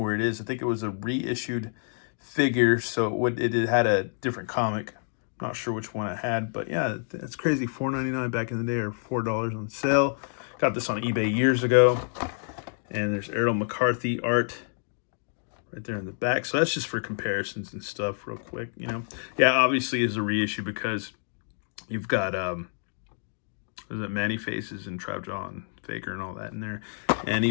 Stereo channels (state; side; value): silent; right; 59 dB below the other